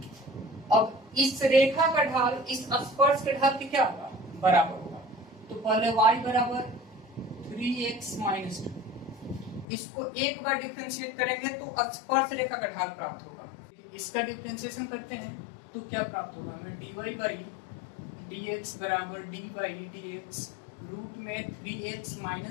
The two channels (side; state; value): right; drops out; at 9.7 s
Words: अब इस रेखा का ढाल इस स्पर्श के ढाल के क्या होगा, बराबर होगा। तो पहले y बराबर 3x माइनस 2, इसको एक बार डिफरेंशिएट करेंगे तो स्पर्श रेखा का ढाल प्राप्त होगा। इसका डिफरेंशिएशन करते हैं तो क्या प्राप्त होगा, हमें dy बाई dx बराबर d बाई dx रूट में 3x